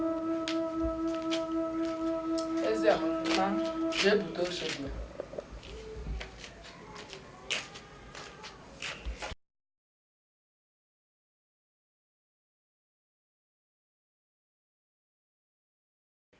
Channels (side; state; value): both; identical; correlation 1.00